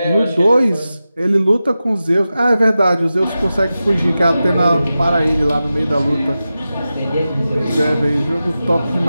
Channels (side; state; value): both; inverted; correlation -0.93